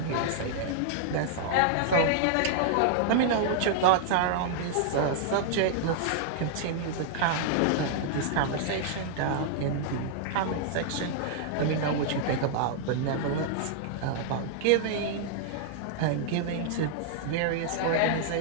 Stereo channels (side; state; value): both; different; correlation -0.01